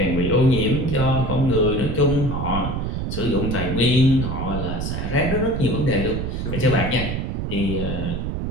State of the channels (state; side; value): noise; right; rumble, 3 dB below the sound